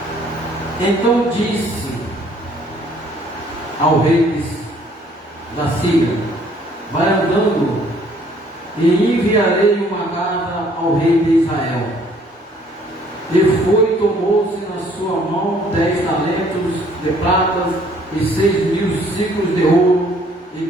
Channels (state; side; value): normal; both; correlation 0.60